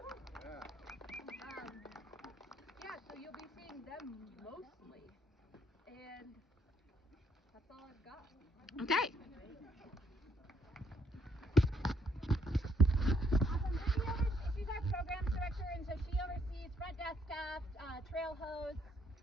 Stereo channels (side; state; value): both; normal; correlation 0.70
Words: Yeah, so you'll be seeing them mostly, and that's all I've got. Okay. Awesome. She's our programs director, and so she oversees front desk staff, trail hose,